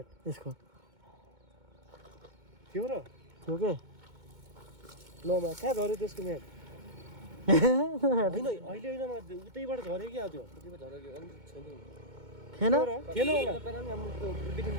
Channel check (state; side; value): late; left; 2.2 ms